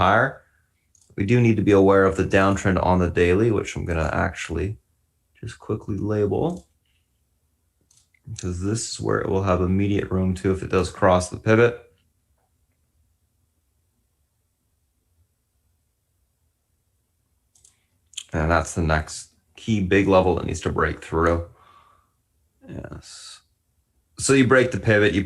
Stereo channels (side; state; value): both; identical; correlation 1.00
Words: We do need to be aware of the downtrend on the daily, which I'm going to actually just quickly label, because this is where it will have immediate room to if it does cross the pivot. And that's the next key big level that needs to break through. Yes. So you break the pivot, you